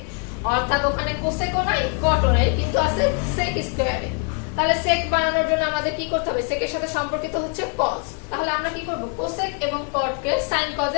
অর্থাৎ ওখানে cosec ও নাই cot ও নাই, কিন্তু আছে sec স্কয়ার a। তাহলে sec বানানোর জন্য আমাদের কি করতে হবে, sec এর সাথে সম্পর্কিত হচ্ছে cos। তাহলে আমরা কি করব, cosec এবং cot কে sin cos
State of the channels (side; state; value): right; quieter; 37.5 dB